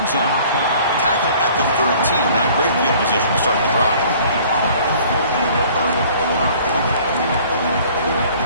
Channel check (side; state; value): both; inverted; correlation -0.52